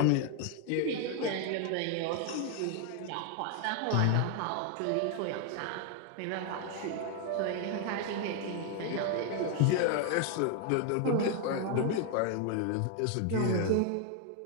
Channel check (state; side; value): different; both; correlation 0.00